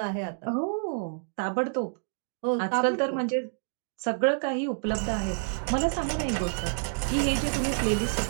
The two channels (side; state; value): left; silent; digital silence